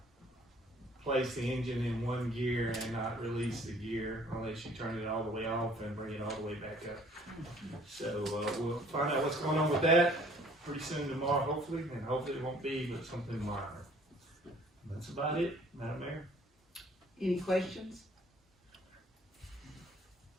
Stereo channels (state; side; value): normal; both; correlation 0.57